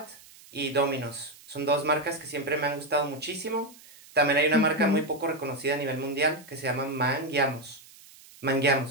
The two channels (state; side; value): noise; right; hiss, 22 dB below the sound